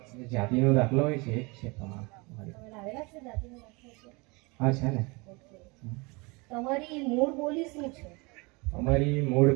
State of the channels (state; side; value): quieter; left; 27.4 dB